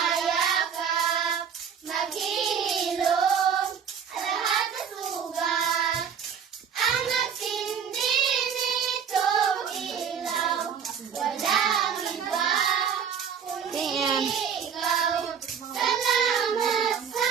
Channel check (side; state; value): left; quieter; 7.4 dB